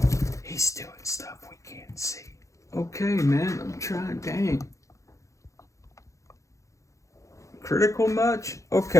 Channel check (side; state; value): right; late; 0.15 ms